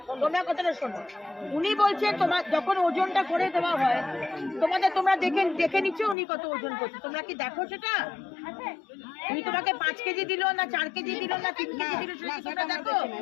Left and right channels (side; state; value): right; drops out; at 6.2 s